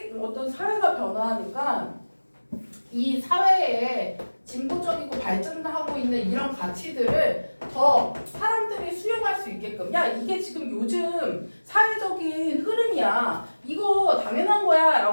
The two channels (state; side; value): inverted; both; correlation -1.00